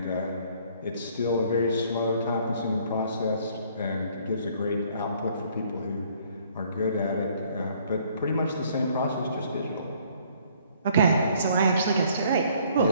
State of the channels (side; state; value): both; inverted; correlation -0.61